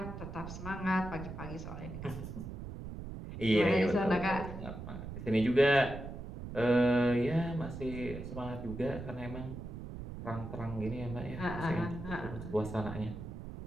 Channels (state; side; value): noise; right; rumble, 9 dB below the sound